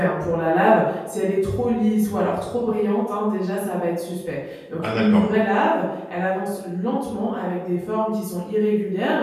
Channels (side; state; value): both; identical; correlation 1.00